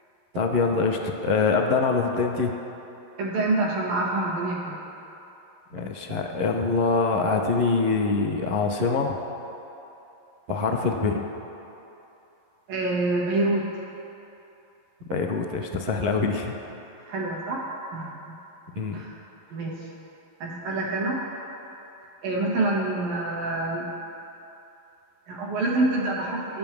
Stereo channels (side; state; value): left; late; 11 ms